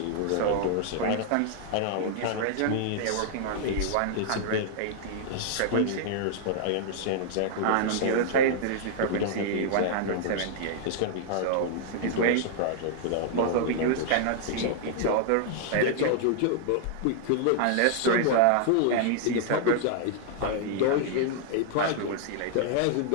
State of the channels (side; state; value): both; different; correlation -0.01